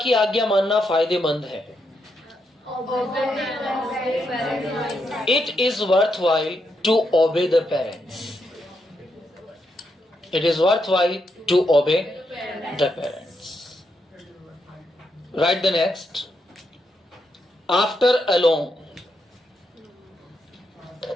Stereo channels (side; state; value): both; normal; correlation 0.81